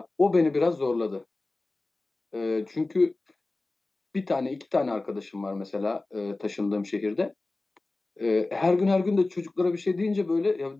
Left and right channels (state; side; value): quieter; right; 3.2 dB